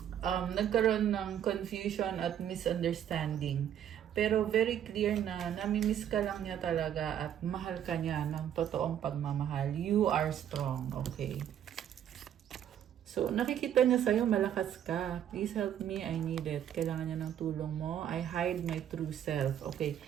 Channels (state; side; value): quieter; left; 10.0 dB